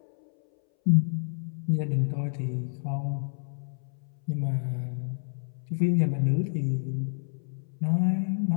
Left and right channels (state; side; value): silent; right; 59 dB below the other